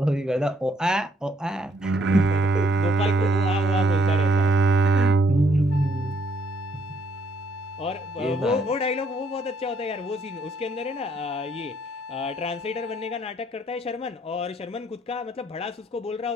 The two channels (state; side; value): normal; both; correlation 0.69